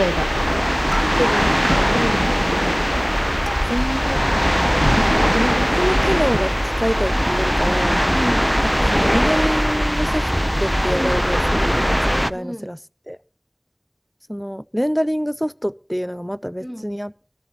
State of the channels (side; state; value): both; identical; correlation 1.00